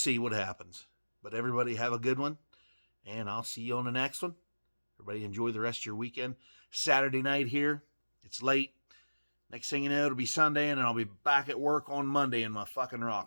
what happens. But everybody have a good one, and I'll see you on the next one. Everybody enjoy the rest of your weekend. Saturday night here. It's late. Next thing you know, it'll be Sunday, and I'll be back at work on Monday in my fucking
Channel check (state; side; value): inverted; both; correlation -1.00